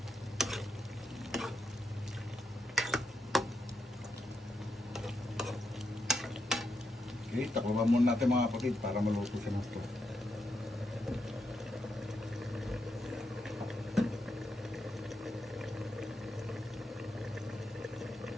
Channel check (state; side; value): normal; both; correlation 0.82